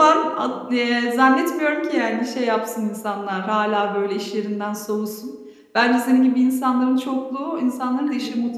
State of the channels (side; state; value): both; identical; correlation 1.00